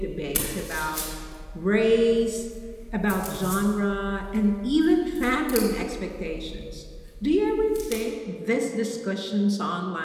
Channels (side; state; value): both; identical; correlation 1.00